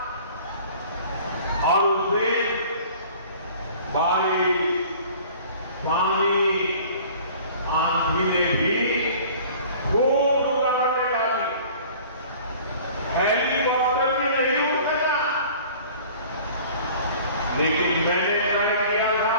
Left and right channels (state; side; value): inverted; both; correlation -0.48